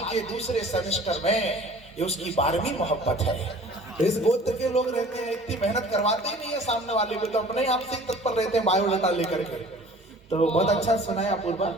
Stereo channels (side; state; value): both; normal; correlation 0.47